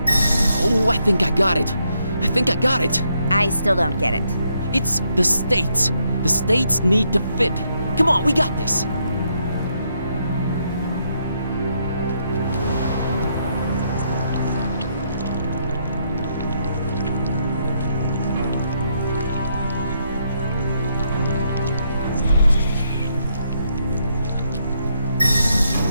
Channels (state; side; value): inverted; both; correlation -0.76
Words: Oh, I think I got it. I still don't get it. It's the states. The states need to fit. Come on, we got this.